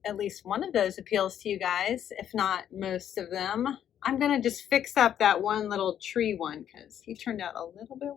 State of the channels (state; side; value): quieter; right; 9.9 dB